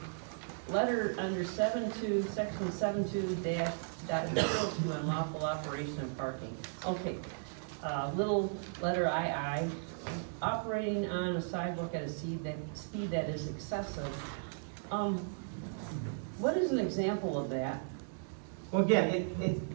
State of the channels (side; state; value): left; silent; digital silence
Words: letter under section 72-.02 unlawful operation of parking. Okay, little letter II, operating on a sidewalk at a speed that is excessive. What is an example of that? Well, again, it